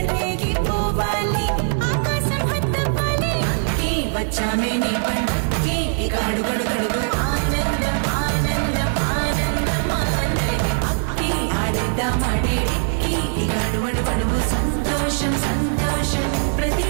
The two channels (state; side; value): silent; left; digital silence